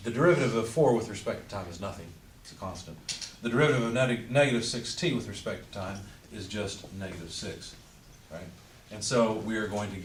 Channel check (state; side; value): identical; both; correlation 1.00